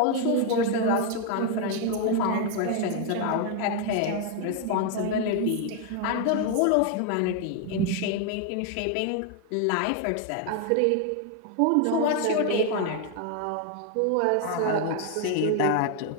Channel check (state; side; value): different; both; correlation 0.01